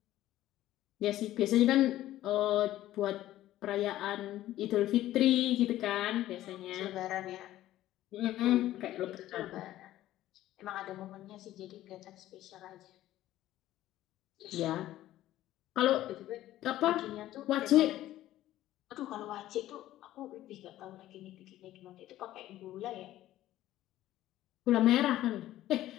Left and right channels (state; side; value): quieter; right; 14.2 dB